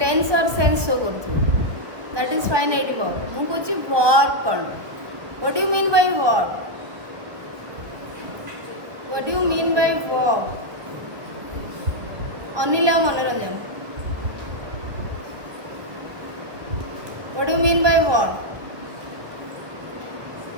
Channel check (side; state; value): left; late; 1.4 ms